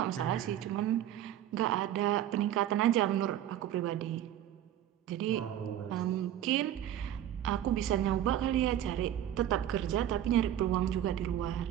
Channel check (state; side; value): quieter; left; 11.4 dB